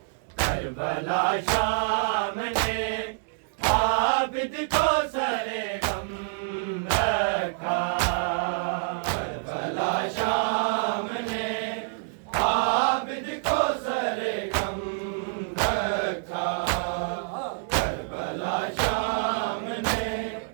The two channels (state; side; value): silent; left; digital silence